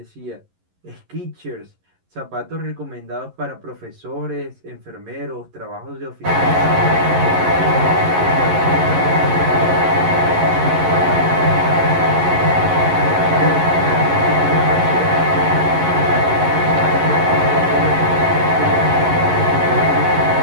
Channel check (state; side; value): late; left; 11 ms